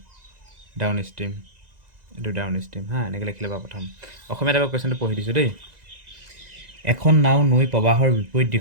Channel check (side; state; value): left; late; 2.0 ms